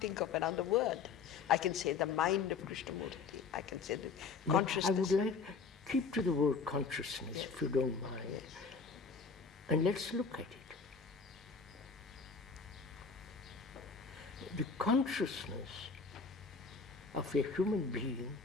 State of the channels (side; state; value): right; quieter; 5.2 dB